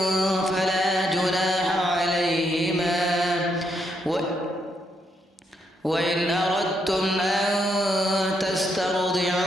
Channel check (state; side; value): normal; both; correlation 0.77